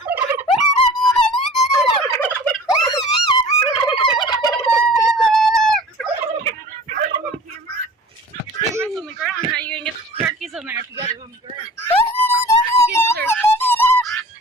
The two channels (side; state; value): both; normal; correlation 0.44